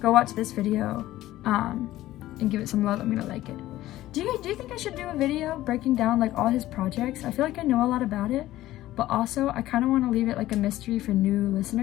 Go watch this video and give it some love. I'm gonna like it. Do you think I should do a video breaking down like all his projects? I feel like I know a lot about it, but also I kind of want to leave it like a mystery for new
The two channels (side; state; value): right; quieter; 15.3 dB